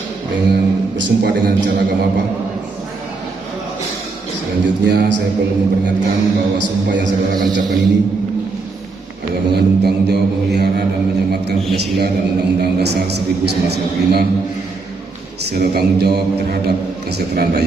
dengan bersumpah dengan cara agama apa? Selanjutnya saya perlu memperingatkan bahwa sumpah yang saudara akan ucapkan ini adalah mengandung tanggung jawab memelihara dan menyematkan Pancasila dan Undang-Undang Dasar 1945 serta tanggung jawab terhadap kesejahteraan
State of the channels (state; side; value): quieter; left; 4.0 dB